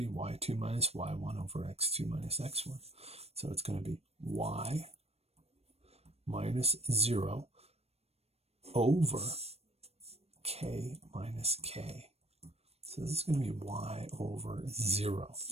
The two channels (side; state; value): left; late; 0.30 ms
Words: y2 minus y1 over x2 minus x1. So it's going to be y minus 0 over k minus k. So this is going to be y over 0.